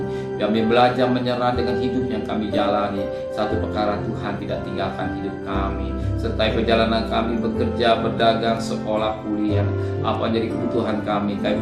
belajar menyerah dengan hidup yang kami jalani. Satu perkara, Tuhan tidak tinggalkan hidup kami. Serta perjalanan kami bekerja, berdagang, sekolah, kuliah, apa jadi kebutuhan kami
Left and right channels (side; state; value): both; identical; correlation 1.00